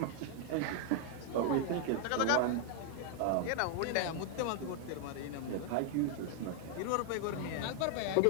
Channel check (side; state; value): both; different; correlation 0.00